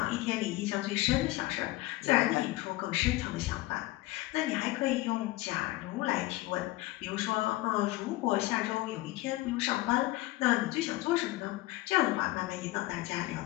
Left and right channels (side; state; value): right; quieter; 18.7 dB